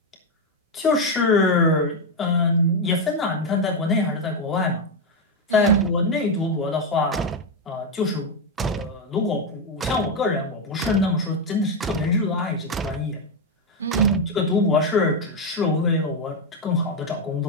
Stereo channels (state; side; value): normal; both; correlation 0.06